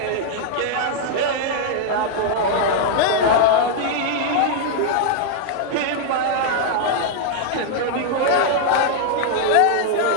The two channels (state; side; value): different; both; correlation 0.00